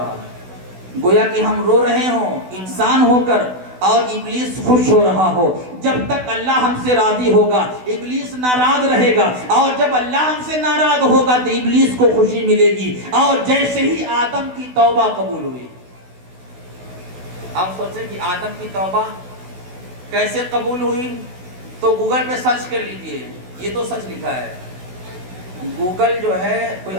گویا کہ ہم رو رہے ہوں انسان ہو کر اور ابلیس خوش ہو رہا ہو۔ جب تک اللہ ہم سے راضی ہوگا ابلیس ناراض رہے گا، اور جب اللہ ہم سے ناراض ہوگا تو ابلیس کو خوشی ملے گی۔ اور جیسے ہی آدم کی توبہ قبول ہوئی، آپ سوچیں کہ آدم کی توبہ کیسے قبول ہوئی، تو گوگل پہ سرچ کر لیجئے، یہ تو سچ لکھا ہے۔ گوگل جو ہے کوئی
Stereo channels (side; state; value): left; late; 16 ms